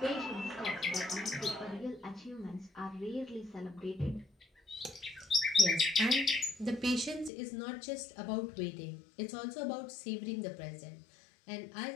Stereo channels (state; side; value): drops out; right; at 7.3 s